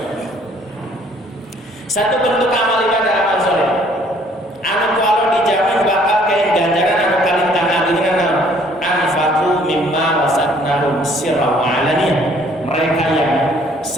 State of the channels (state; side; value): normal; both; correlation 0.60